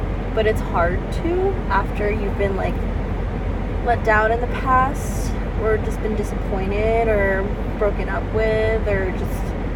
but it's hard to after you've been like let down in the past, or just been disappointed or broken up with, or just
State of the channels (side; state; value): both; identical; correlation 1.00